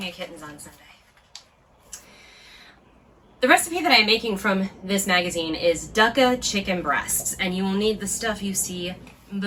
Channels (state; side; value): identical; both; correlation 1.00